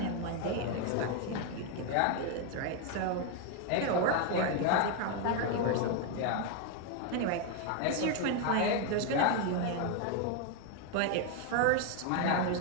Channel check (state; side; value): different; both; correlation 0.01